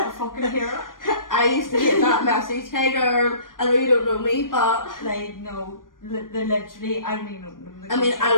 to fucking hear it. I used to get that message, hey girl, I know you don't know me, but Like, no, they literally, I don't even know them. I mean, I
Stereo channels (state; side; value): late; right; 0.90 ms